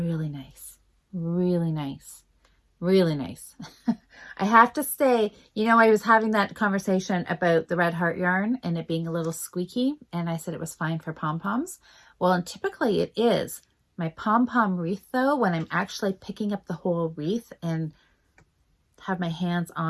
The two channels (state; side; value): identical; both; correlation 1.00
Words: nice. Really nice. Really nice. I have to say, you know, I was having that conversation about the Red Heart yarn and it being a little squeaky, and I said it was fine for pom-poms. Well, and typically it is. My pom-pom wreath, though, when I'm actually picking up the whole wreath and have my hands